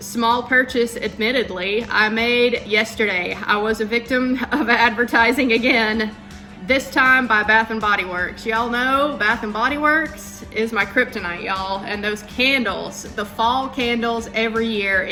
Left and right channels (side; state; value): both; identical; correlation 1.00